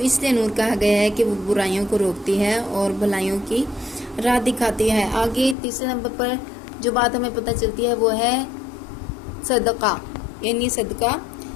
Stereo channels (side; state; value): right; drops out; at 5.6 s